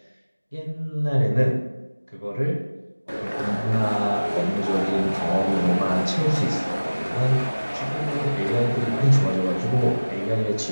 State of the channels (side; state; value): both; inverted; correlation -1.00